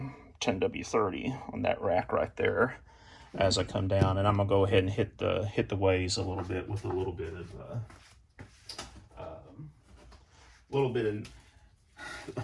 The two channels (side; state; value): both; identical; correlation 1.00